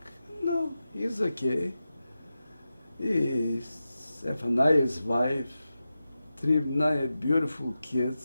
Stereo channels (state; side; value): inverted; both; correlation -0.92